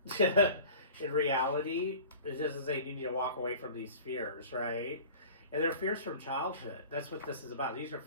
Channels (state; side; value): inverted; both; correlation -0.41